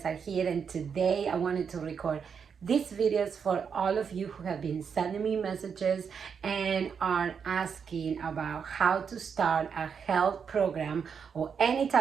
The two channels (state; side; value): quieter; left; 6.6 dB